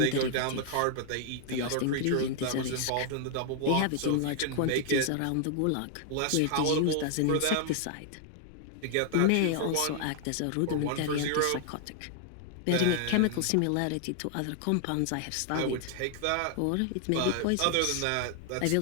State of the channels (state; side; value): different; both; correlation 0.00